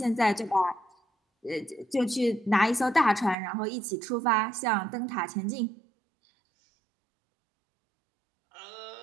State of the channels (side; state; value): left; drops out; at 3.4 s